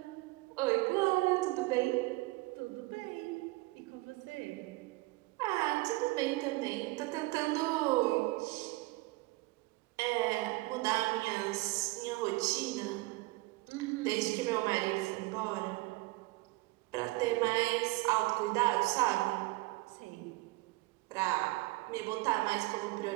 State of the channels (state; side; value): quieter; left; 21.8 dB